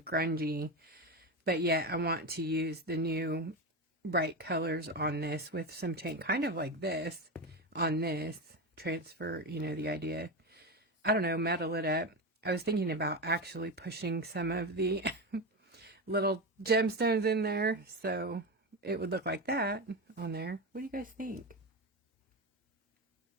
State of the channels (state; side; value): normal; both; correlation 0.17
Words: grungy, but yet I want to use the new bright colors on this with some paint, kind of like this on this, transfer, you know, the idea. I don't know, metal it up. I was thinking about actually pushing some of the little gemstones in there so it would look like that on there. What do you guys think?